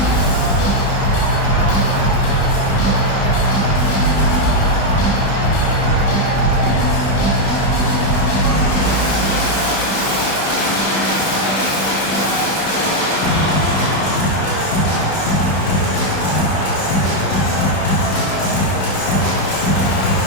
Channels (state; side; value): late; right; 32 ms